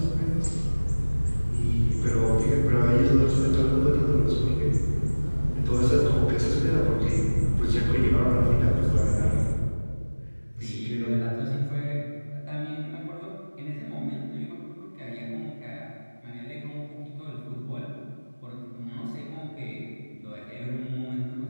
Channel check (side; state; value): both; inverted; correlation -1.00